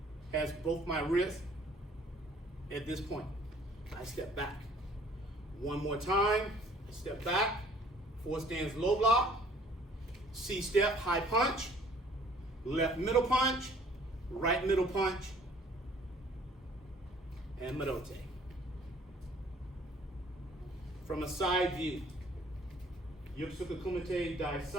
has both my wrists at this point. I step back. One more time, I step back, 4 stands low block, C step, high punch, left middle punch, right middle punch, and Marote. From a side view, Yokosuka Kumite Dai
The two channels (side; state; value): both; normal; correlation 0.57